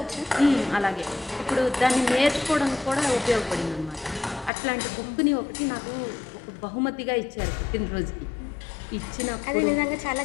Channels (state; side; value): drops out; right; at 4.5 s